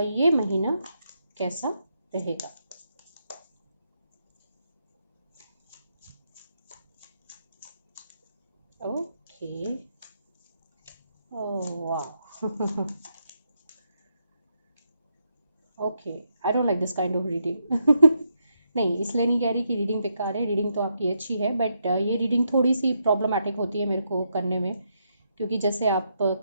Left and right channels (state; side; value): inverted; both; correlation -0.80